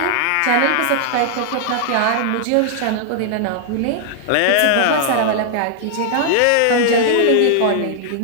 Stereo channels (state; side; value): different; both; correlation 0.00